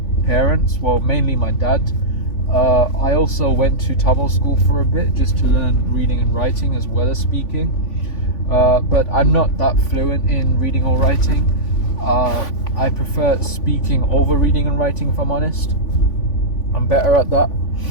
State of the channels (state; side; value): late; right; 3.5 ms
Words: parents, well, mainly my dad. I also went to Tamil school for a bit just to learn reading and writing as well as speaking, but I'm not that fluent in reading or writing. I prefer speaking over reading and writing, if I'm honest. I'm better at that,